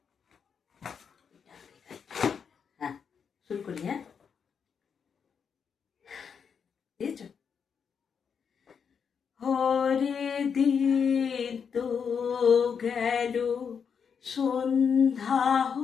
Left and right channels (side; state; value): right; quieter; 6.7 dB